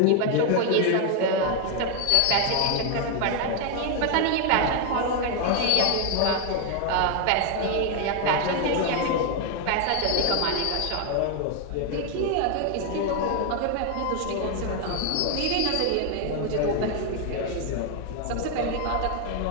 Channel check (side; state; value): both; different; correlation 0.01